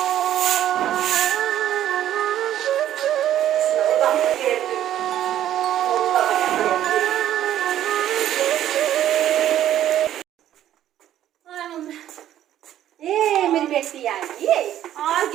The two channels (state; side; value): quieter; left; 11.8 dB